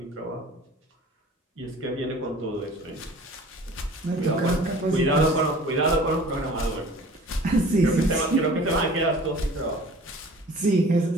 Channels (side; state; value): both; normal; correlation 0.46